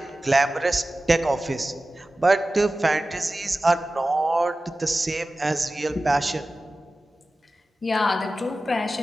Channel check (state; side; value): normal; both; correlation 0.95